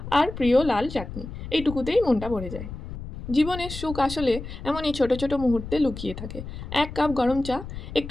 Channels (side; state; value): left; noise; rumble, 10 dB below the sound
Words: আর প্রিয় লাল চাটনি, এইটুকুতেই মনটা ভরে যায়। জীবনের সুখ আসলে এমনই ছোট ছোট মুহূর্তে লুকিয়ে থাকে। এক কাপ গরম চা,